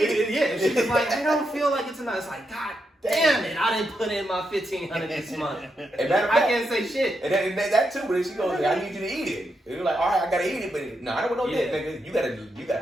it. Yeah. She's I don't feel like it's enough. It's God damn it, I didn't put in my $1,500 this month. I can't say shit. And that too, but then she goes, I need you to eat it. And you're all right, I gotta eat it, but no, I don't want no dick, nigga. You gotta.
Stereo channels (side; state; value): both; normal; correlation 0.83